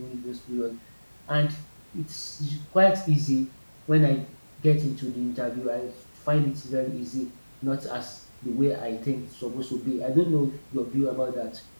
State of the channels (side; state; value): both; inverted; correlation -1.00